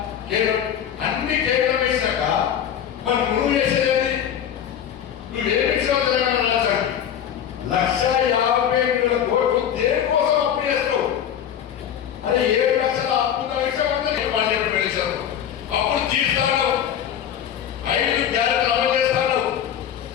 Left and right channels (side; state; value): right; quieter; 9.4 dB